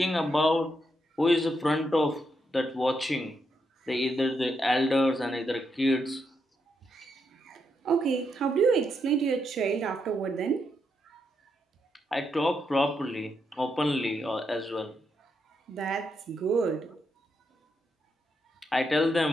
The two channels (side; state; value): both; normal; correlation 0.81